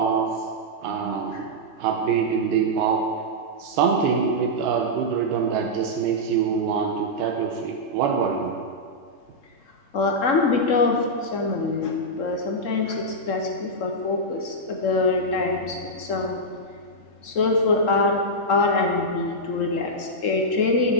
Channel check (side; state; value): right; late; 3.7 ms